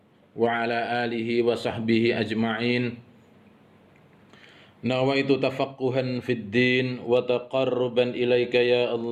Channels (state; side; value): identical; both; correlation 1.00